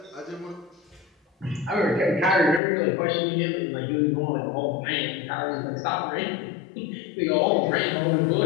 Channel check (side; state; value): right; drops out; at 2.6 s